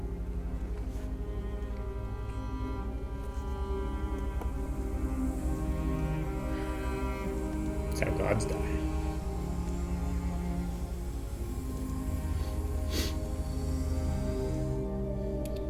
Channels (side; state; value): both; identical; correlation 1.00